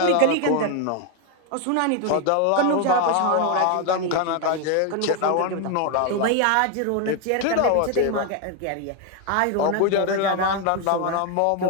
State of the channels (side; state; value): both; different; correlation 0.01